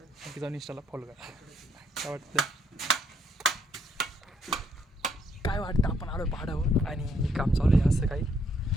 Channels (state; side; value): normal; both; correlation 0.71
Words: आणखी जाऊन इंस्टाला फॉलो करा. काय वाटतं आपण आलो पहाडावर आणि काम चालू आहे असं काही.